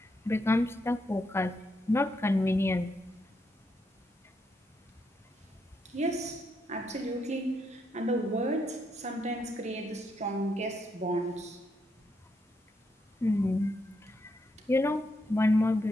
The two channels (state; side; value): normal; both; correlation 0.79